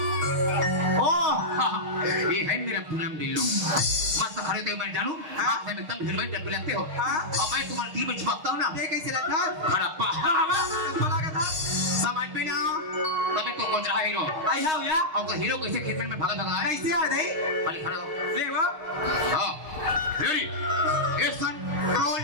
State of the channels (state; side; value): late; left; 6.4 ms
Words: ओ ये है मेरा पूनम दिल्लो मस्त खड़े थे मैं जानू आप है एकदम हिलवाई जब लगते हो हाँ? अब मैं तुम्हारी टीम में चिपकता हूँ ना ये कैसे लगता खड़ा पा बोला का था समझ में ना तभी तो कुछ रहा हीरो आई हाउ या और का हीरो कैसे खेत में भागा भागा है कैसे आ दई पहले खड़े हो ले वो हाँ रेडी एक्शन रोल